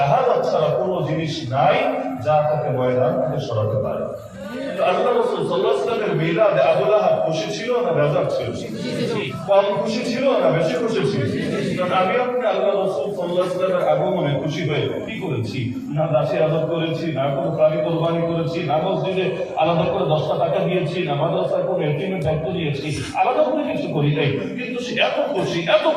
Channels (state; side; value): identical; both; correlation 1.00